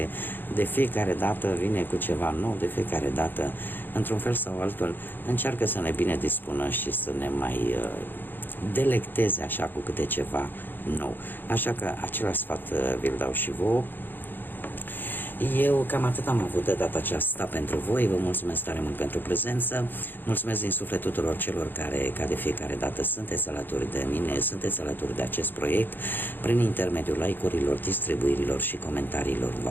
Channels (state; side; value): late; right; 0.093 ms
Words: de fiecare dată vine cu ceva nou, de fiecare dată, într-un fel sau altul, încearcă să ne bine dispună și să ne mai delecteze așa cu câte ceva nou. Așa că același sfat vi-l dau și vouă. Eu cam atât am avut de data aceasta pentru voi. Vă mulțumesc tare mult pentru prezență. Mulțumesc din suflet tuturor celor care, ca de fiecare dată, sunteți alături de mine, sunteți alături de acest proiect prin intermediul like-urilor, distribuirilor și comentariilor